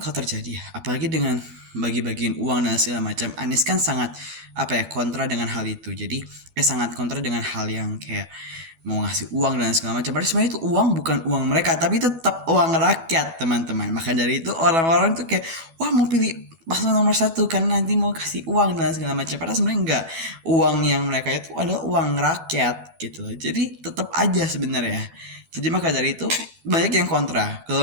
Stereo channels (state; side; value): late; left; 12 ms